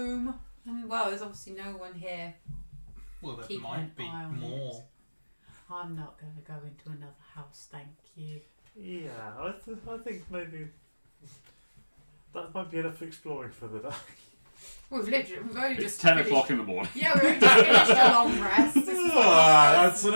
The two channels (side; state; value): both; inverted; correlation -1.00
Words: And well, there's obviously no one here. Well, there Keep might an be eye on more. I'm not going to go into another house, thank you. Yeah, I think maybe that might be enough exploring for the day. We've only It's just 10 finished. o'clock in the morning. Yeah, we've only just finished a long rest. This is That's